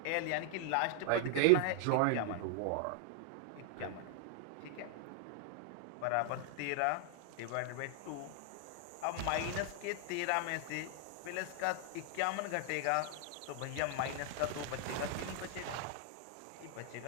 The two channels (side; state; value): both; different; correlation 0.00